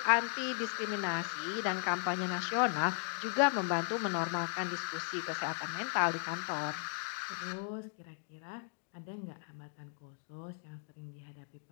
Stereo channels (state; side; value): silent; right; 53 dB below the other